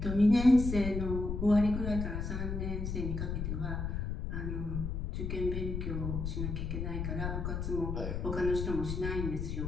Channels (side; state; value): left; noise; rumble, 3 dB below the sound